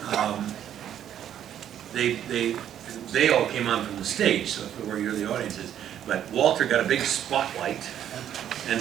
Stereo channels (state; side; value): quieter; left; 10.3 dB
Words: they all came on from the stage, so where the audience is. But Walter got a big spotlight,